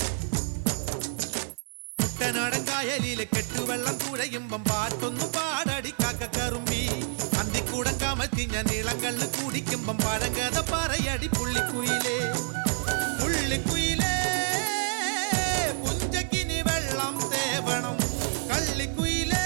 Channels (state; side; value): silent; left; digital silence